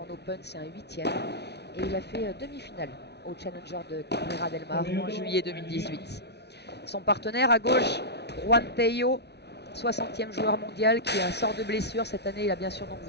Open, c'est un 8e. Et il a fait demi-finale au Challenger de Cabrera del Mar en juillet 2018. Son partenaire à gauche, Juan Tello, 60e joueur mondial qui sort de blessure. Cette année, il a bien sûr, donc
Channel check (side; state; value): right; late; 0.49 ms